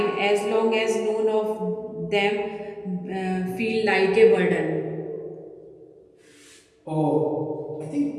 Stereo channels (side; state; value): both; identical; correlation 1.00